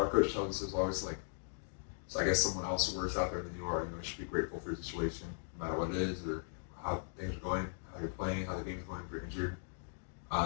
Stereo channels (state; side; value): silent; right; digital silence